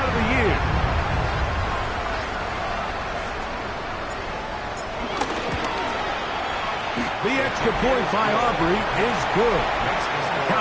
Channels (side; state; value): both; identical; correlation 1.00